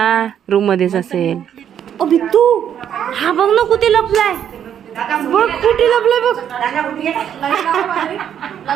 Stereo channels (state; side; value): quieter; left; 9.3 dB